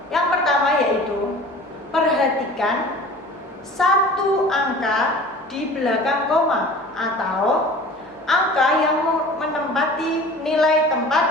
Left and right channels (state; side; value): normal; both; correlation 0.43